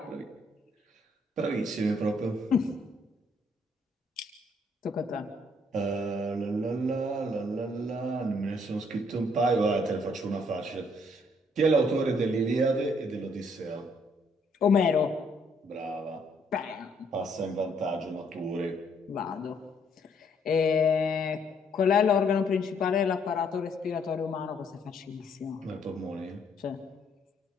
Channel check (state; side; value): normal; both; correlation 0.68